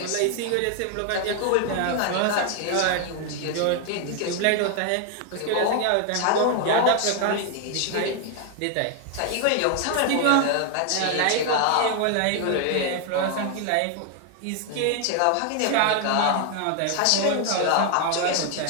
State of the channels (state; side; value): different; both; correlation 0.00